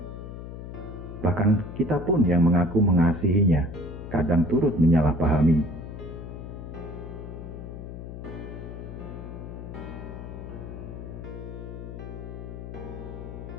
Bahkan kita pun yang mengaku mengasihinya, kadang turut menyalahpahami.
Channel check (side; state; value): left; noise; hum, 10 dB below the sound